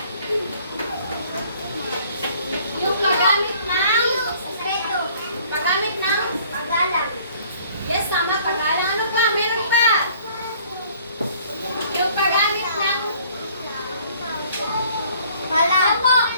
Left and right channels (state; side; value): inverted; both; correlation -0.57